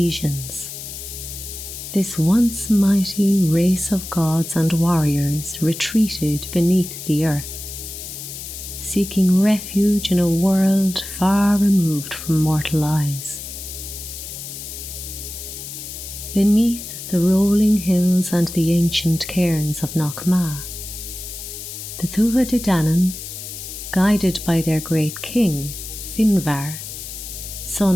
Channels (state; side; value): noise; left; hiss, 10 dB below the sound